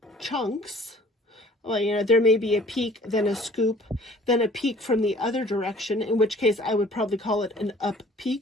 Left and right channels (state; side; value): normal; both; correlation 0.53